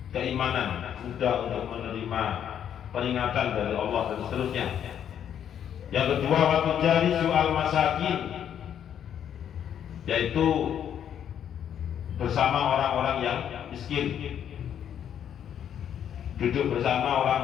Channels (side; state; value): right; quieter; 9.3 dB